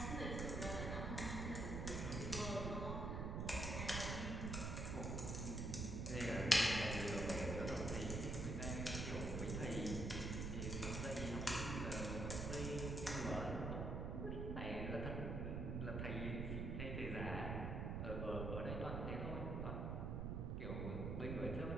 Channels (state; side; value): noise; right; rumble, 1 dB below the sound